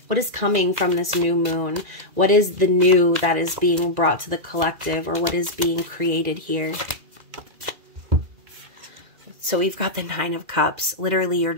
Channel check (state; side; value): late; left; 2.0 ms